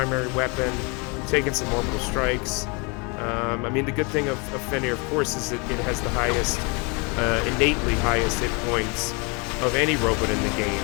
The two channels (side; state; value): right; quieter; 31.1 dB